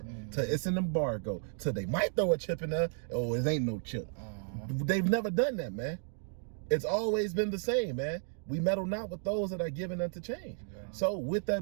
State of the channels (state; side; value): silent; left; 56 dB below the other